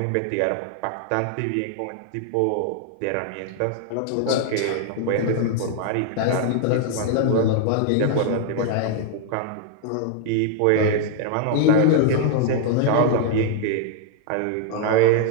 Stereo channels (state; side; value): different; both; correlation 0.00